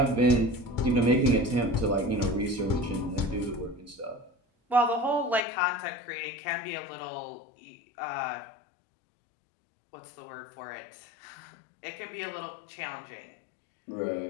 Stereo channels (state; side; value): drops out; right; at 5.4 s